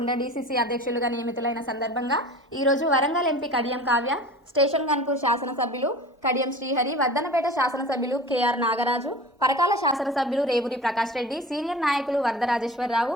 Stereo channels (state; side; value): normal; both; correlation 0.38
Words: డీసీసీ అధ్యక్షులుగా నియమితులైన సందర్భంగా ఈరోజు వరంగల్ ఎంపీ కడియం కావ్య, స్టేషన్ గన్పూర్ శాసనసభ్యులు కడియం శ్రీహరి, వద్దనపేట శాసనసభ్యులు కేఆర్ నాగరాజు, పరకాల శాసనసభ్యులు రేవూరి ప్రకాష్ రెడ్డి, సీనియర్ నాయకులు